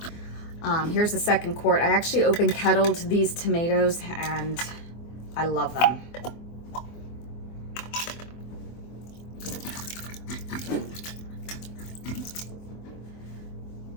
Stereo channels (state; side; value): late; right; 24 ms